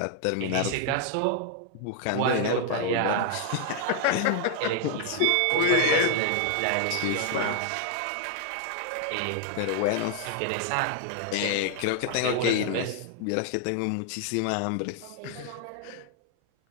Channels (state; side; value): different; both; correlation 0.00